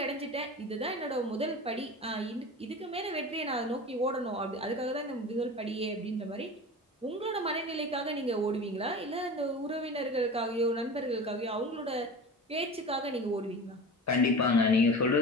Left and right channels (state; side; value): normal; both; correlation 0.33